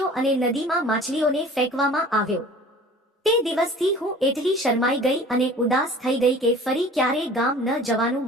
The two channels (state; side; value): normal; both; correlation 0.45